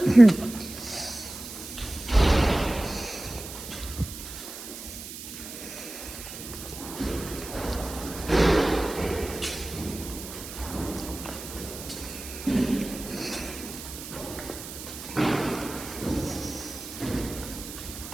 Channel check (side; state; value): right; noise; hiss, 11 dB below the sound